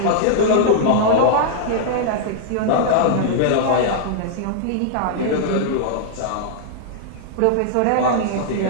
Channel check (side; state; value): both; different; correlation -0.01